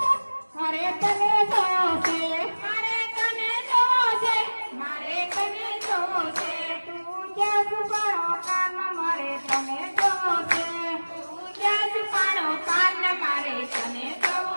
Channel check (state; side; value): inverted; both; correlation -1.00